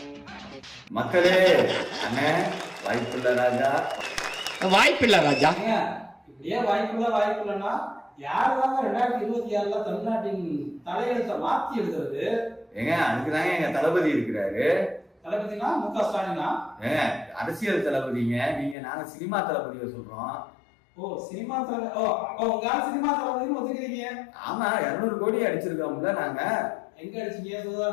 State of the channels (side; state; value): right; drops out; at 18.8 s